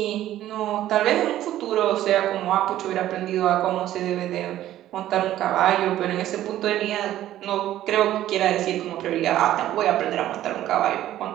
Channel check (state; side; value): quieter; left; 13.2 dB